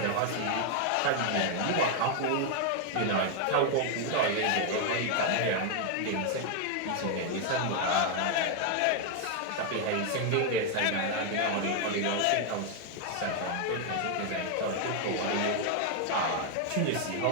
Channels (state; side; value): different; both; correlation 0.00